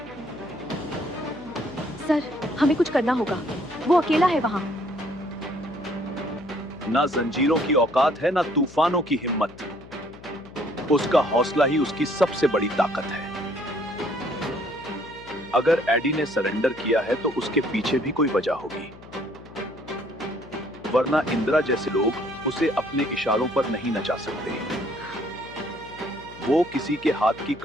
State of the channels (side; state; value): left; noise; hum, 19 dB below the sound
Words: सर, हमें कुछ करना होगा। वो अकेला है वहाँ। ना जंजीरों की औकात है, ना तूफानों की हिम्मत। उसका हौसला ही उसकी सबसे बड़ी ताकत है। अगर एडी ने सरेंडर किया है तो उसके पीछे भी कोई वजह होगी, वरना इंदिरा जैसे लोग उसे अपने इशारों पर नहीं नचा सकते। वो किसी के हाथ की